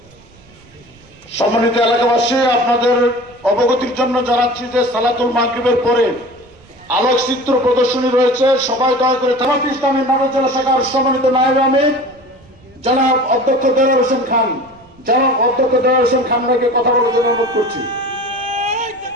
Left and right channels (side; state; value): right; noise; rumble, 27 dB below the sound